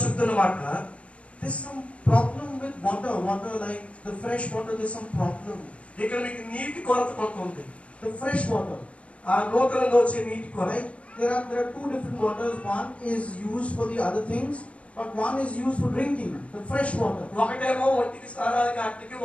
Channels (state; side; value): late; right; 0.062 ms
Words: చెప్తున్న మాట, there's some problem with water like the fresh water. There's some problem. ఇక్కడ మీకు నీటి కొరత కొంత ఉంది. The fresh water. ఆ నూతనంగా వచ్చే నీటి కొరత. Right? There are two different waters. One is used for the other things, but one is used for drinking. The fresh water. ఒకటేమో ఒంటికి స్నానానికి ఆటికి,